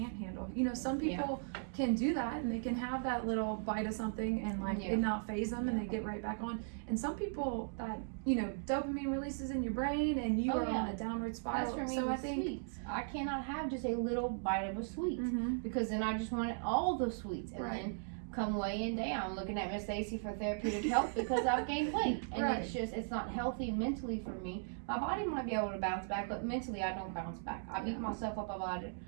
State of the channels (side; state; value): left; silent; digital silence